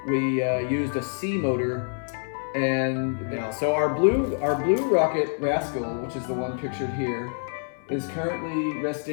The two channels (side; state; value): right; silent; 61 dB below the other